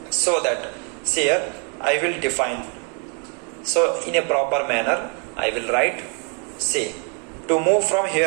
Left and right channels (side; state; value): left; quieter; 38.6 dB